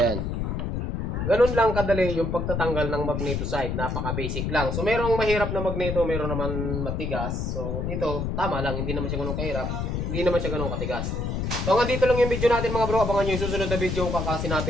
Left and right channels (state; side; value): noise; left; rumble, 2 dB below the sound